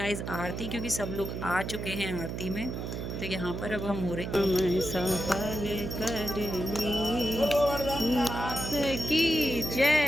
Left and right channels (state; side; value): noise; right; hum, 5 dB below the sound